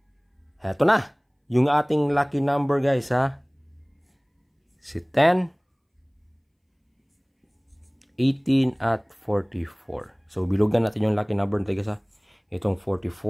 Heto na. Yung ating lucky number guys ha. Si 10, 18, at 44. So bilugan natin yung lucky number natin guys ha. Itong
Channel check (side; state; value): both; identical; correlation 1.00